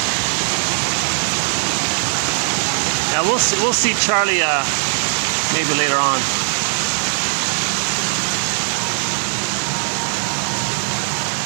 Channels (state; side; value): silent; left; digital silence